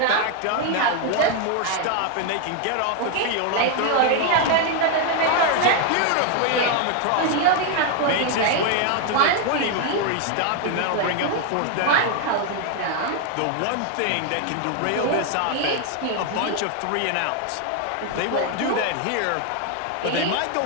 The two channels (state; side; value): different; both; correlation 0.01